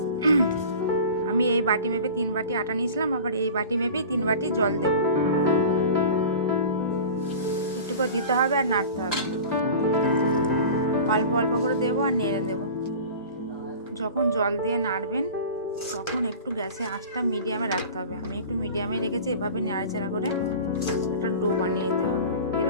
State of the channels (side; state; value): both; inverted; correlation -0.37